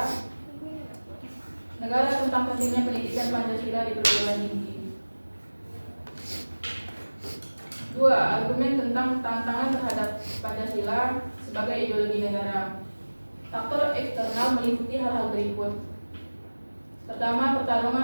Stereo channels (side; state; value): both; inverted; correlation -1.00